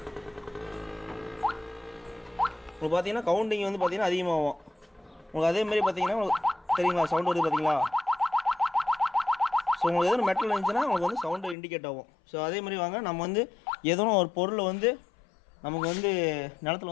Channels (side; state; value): right; drops out; at 11.6 s